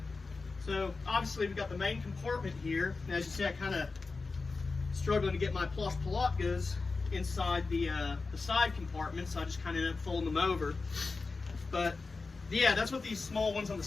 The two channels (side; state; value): right; quieter; 4.0 dB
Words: So obviously we've got the main compartment here, and as you see, I kind of struggling to get my plush palatkas inside the side compartment, so I just kind of ended up folding them over. But yeah, that's what these small ones on the